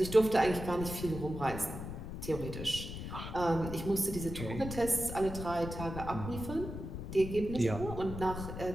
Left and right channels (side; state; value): left; noise; rumble, 7 dB below the sound